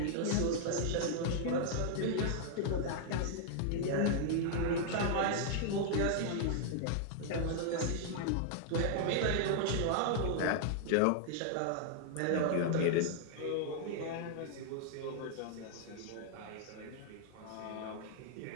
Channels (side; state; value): both; different; correlation -0.01